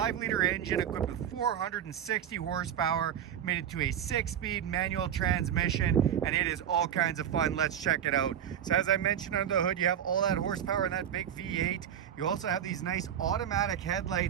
engine equipped with 460 horsepower, made it to a 6-speed manual transmission, and it is all kinds of fun. Let's check it out. So as I mentioned, under the hood you have all that horsepower in that big V8. You also have these nice automatic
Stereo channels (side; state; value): left; quieter; 9.6 dB